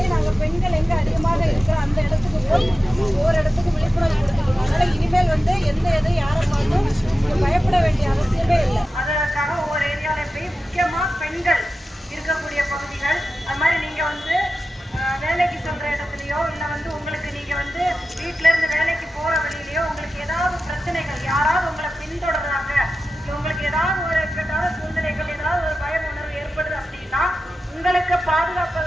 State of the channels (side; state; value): both; normal; correlation 0.93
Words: நாங்க பெண்கள் எங்க அதிகமாக இருக்கிற அந்த இடத்துக்கு போய் ஒவ்வொரு இடத்துக்கு விழிப்புணர்வு கொடுத்துருக்கோம். அதனால இனிமேல் வந்து எந்த எது யாரை பார்த்தும் பயப்பட வேண்டிய அவசியமே இல்லை. அதற்காக ஒவ்வொரு ஏரியாவில போய் முக்கியமா பெண்கள் இருக்கக்கூடிய பகுதிகள், அது மாதிரி நீங்க வந்து வேலைக்கு சொல்ற இடத்துலயோ இல்ல வந்து உங்களுக்கு நீங்க வந்து வீட்டுல இருந்து வேலைக்கு போற வழியிலயோ உங்களுக்கு ஏதாவது பிரச்சனைகள், யாராவது உங்களை பின்தொடர்றாங்க, உங்களுக்கு ஏதாவது ஒரு இக்கட்டான சூழ்நிலைகள், ஏதாவது ஒரு பய உணர்வு ஏற்படுது அப்படின்னா உங்களுக்கு